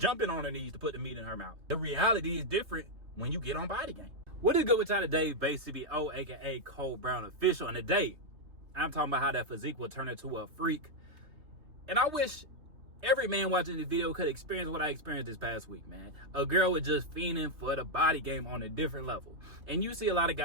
on her knees to put the meat in her mouth. The reality is different when you get on Body Game. What is good with y'all today? Basically, aka Cole Brown Official. And today, I'm talking about how that physique will turn into a freak. And I wish every man watching this video could experience what I experienced this past week, man. A girl was just fiending for the body game on a different level. And you see a lot of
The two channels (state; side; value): late; left; 3.2 ms